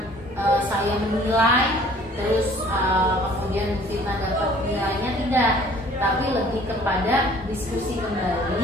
saya menilai terus kemudian Bu Fitna dapat nilainya, tidak, tapi lebih kepada diskusi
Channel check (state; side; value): normal; both; correlation 0.54